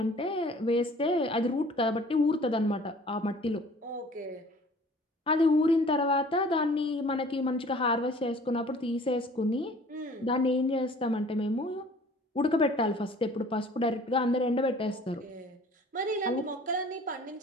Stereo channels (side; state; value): both; normal; correlation 0.50